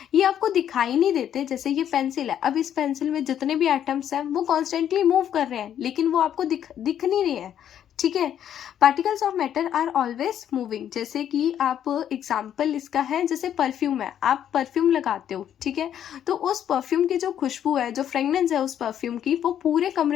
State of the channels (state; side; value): quieter; right; 10.0 dB